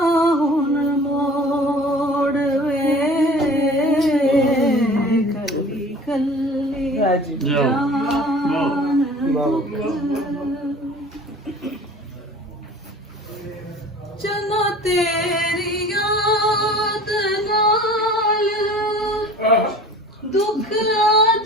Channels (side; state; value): both; normal; correlation 0.44